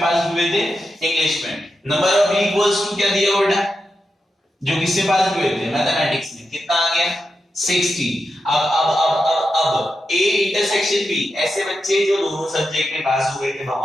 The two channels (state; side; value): normal; both; correlation 0.88